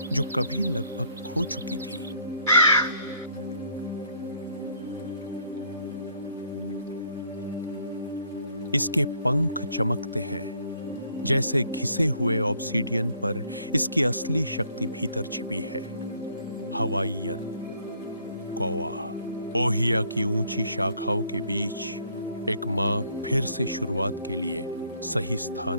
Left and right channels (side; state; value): both; inverted; correlation -0.64